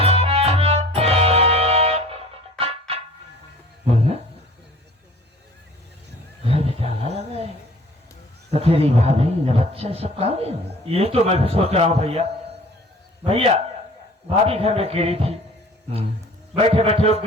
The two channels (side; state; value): both; normal; correlation 0.48